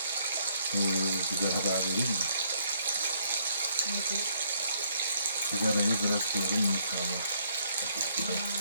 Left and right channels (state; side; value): inverted; both; correlation -0.69